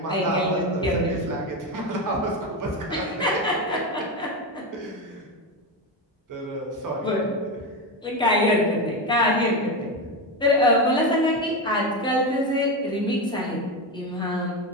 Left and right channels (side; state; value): both; normal; correlation 0.15